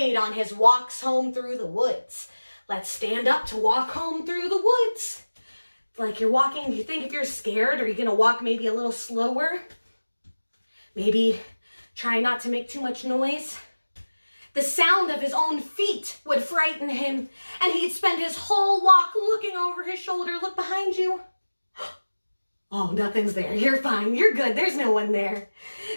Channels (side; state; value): both; inverted; correlation -1.00